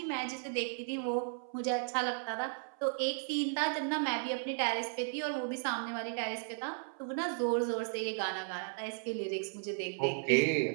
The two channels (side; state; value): left; silent; 54 dB below the other